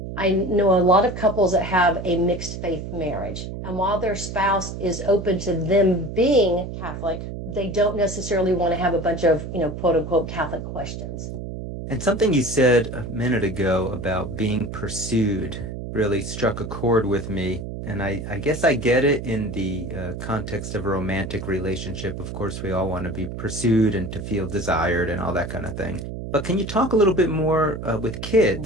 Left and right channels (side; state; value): right; noise; hum, 7 dB below the sound